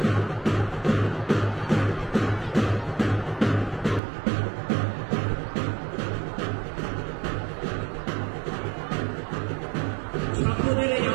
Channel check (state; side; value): drops out; left; at 4.0 s